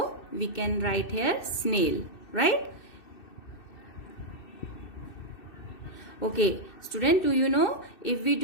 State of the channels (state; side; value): late; right; 2.6 ms